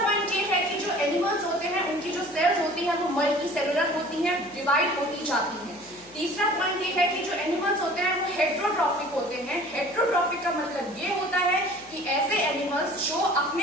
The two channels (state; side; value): noise; left; hum, 27 dB below the sound